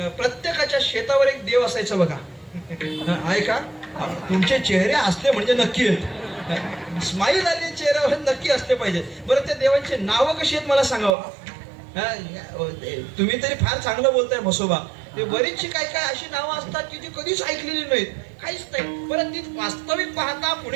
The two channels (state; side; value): drops out; left; at 11.2 s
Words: प्रत्येकाच्या शेतावर एक देव असायचं बघा. आहे का? तुमचे चेहरे असले म्हणजे नक्की आहेत, स्माईल आली चेहऱ्यावर नक्की असले पाहिजे. बरं, त्या देवांची नावं कशी आहेत मला सांगावं. तुम्ही तरी फार चांगलं बोलताय म्हसोबा. ते बरीचशी काय काय अशी नावं असतात की जी कधीच ऐकलेली नाहीत, काहीच नाही. परत ती वास्तविक पाहता